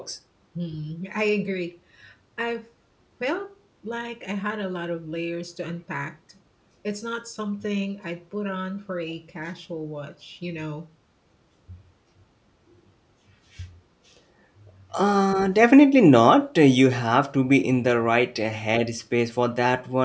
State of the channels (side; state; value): both; identical; correlation 1.00